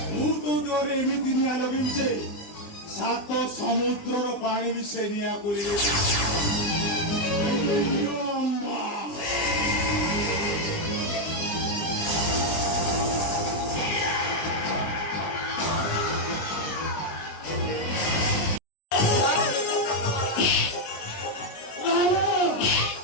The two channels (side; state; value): right; late; 19 ms